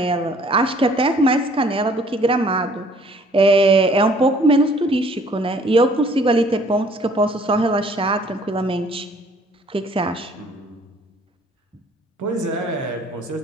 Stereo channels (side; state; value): both; normal; correlation 0.58